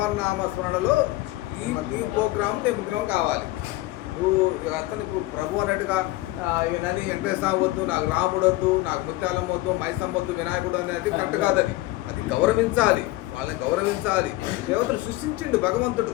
నామస్మరణలో ఈ ప్రోగ్రామ్ నిమగ్నం కావాలి. నువ్వు అతను ఇప్పుడు ప్రభు అన్నట్టుగా నని వెంకటేశ్వర వద్దు, నాకు రాముడు వద్దు, నాకు ముత్యాలం వద్దు, మైసమ్మ వద్దు, వినాయకుడు అనేది కరెక్ట్ కాదని. అది గౌరవించాలి, వాళ్ళని గౌరవించాలి. దేవతలు సృష్టించిండు, భగవంతుడు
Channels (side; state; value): right; quieter; 18.3 dB